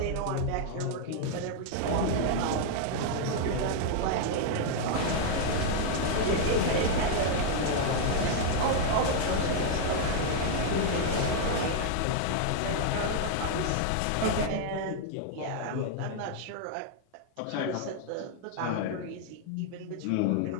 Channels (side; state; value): both; different; correlation 0.00